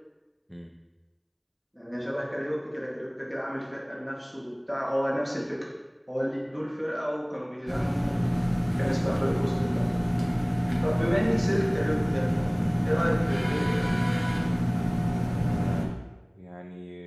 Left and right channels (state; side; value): identical; both; correlation 1.00